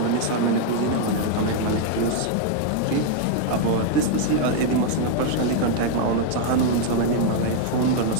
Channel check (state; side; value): different; both; correlation 0.00